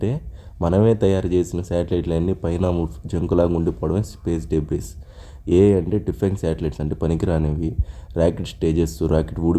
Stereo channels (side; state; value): both; identical; correlation 1.00